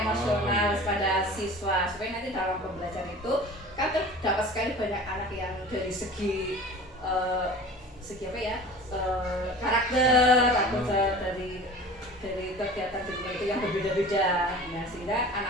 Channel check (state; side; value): normal; both; correlation 0.40